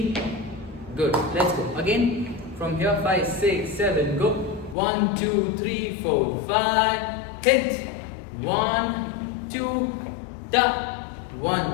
Good. Let's go. Again from here 5, 6, 7, go. 1, 2, 3, 4, 5. Hit. 1, 2, tap.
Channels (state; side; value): drops out; right; at 4.8 s